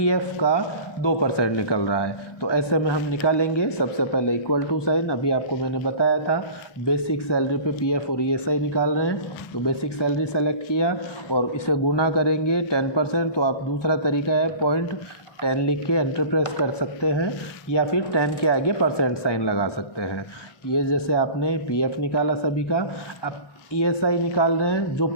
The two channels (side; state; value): right; late; 1.1 ms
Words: का 2% निकल रहा है। तो ऐसे में हम निकालेंगे। सबसे पहले इक्वल टू साइन, अभी आपको मैंने बताया था बेसिक सैलरी पे PF और ESI निकाल रहे हैं। तो बेसिक सैलरी सेलेक्ट किया और इसे गुना करेंगे 10%। तो आप दूसरा तरीका है 0.10 लिख के एंटर प्रेस कर सकते हैं या फिर 10 के आगे परसेंट साइन लगा सकते हैं। ये जैसे आपने PF निकाला सभी का, अब ESI निकाल रहे हैं जो